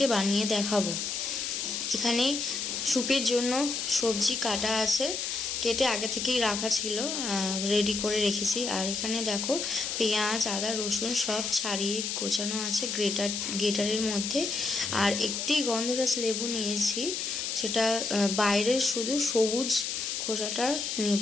বানিয়ে দেখাবো। এখানে স্যুপের জন্য সবজি কাটা আছে, কেটে আগে থেকেই রাখা ছিল, রেডি করে রেখেছি। আর এখানে দেখো পেঁয়াজ, আদা, রসুন সব ছাড়িয়ে কোচানো আছে গ্রেটারের মধ্যে। আর একটি গন্ধরাজ লেবু নিয়েছি, সেটা বাইরের শুধু সবুজ খোসাটা নেব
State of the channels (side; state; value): left; noise; hiss, 2 dB below the sound